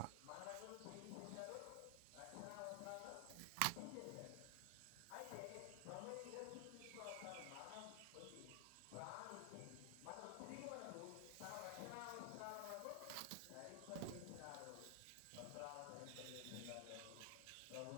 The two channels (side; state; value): both; different; correlation 0.00